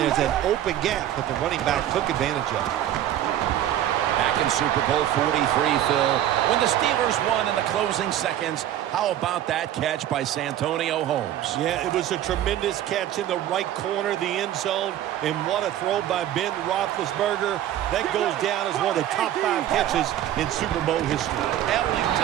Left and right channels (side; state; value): left; quieter; 12.0 dB